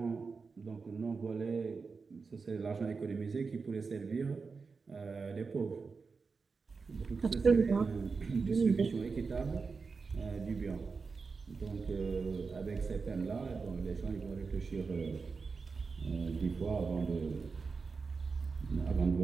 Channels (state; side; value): quieter; left; 4.7 dB